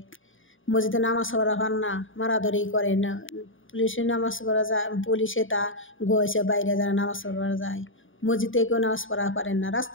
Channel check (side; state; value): right; late; 0.57 ms